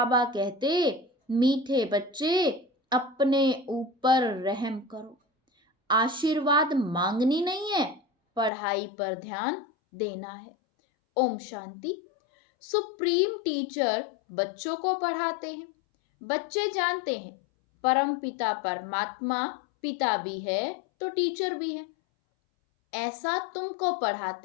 कहते, मीठे बच्चे, अपने ऊपर रहम करो। आशीर्वाद मांगनी नहीं है, पढ़ाई पर ध्यान देना है। ओम शांति। सुप्रीम टीचर बच्चों को पढ़ाते हैं। बच्चे जानते हैं परम पिता परमात्मा पिता भी है तो टीचर भी है। ऐसा तुमको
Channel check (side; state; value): right; drops out; at 8.5 s